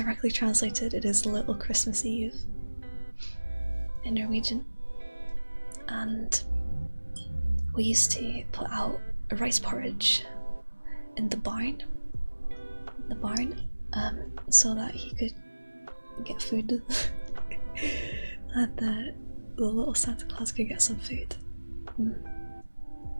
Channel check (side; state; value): both; inverted; correlation -1.00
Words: translated, it is Little Christmas Eve in Norwegian. And we used to put out a rice porridge in the barn, so that he could get food. That the little Santa Claus could get some food.